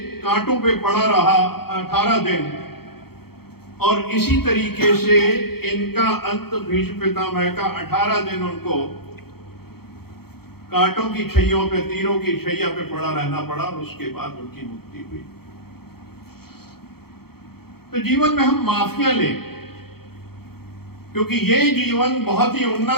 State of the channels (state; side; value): late; right; 0.95 ms